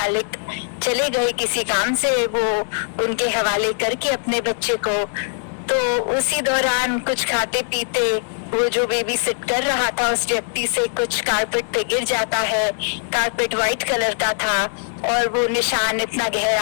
चले गए किसी काम से, वो उनके हवाले करके अपने बच्चे को। तो उसी दौरान कुछ खाते पीते वो जो बेबी सिट कर रहा था उस व्यक्ति से कुछ कारपेट पे गिर जाता है। कारपेट व्हाइट कलर का था और वो निशान इतना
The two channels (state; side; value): silent; right; 58 dB below the other